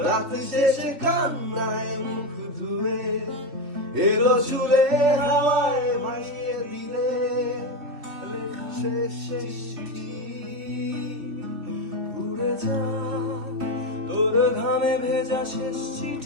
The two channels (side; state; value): left; late; 3.1 ms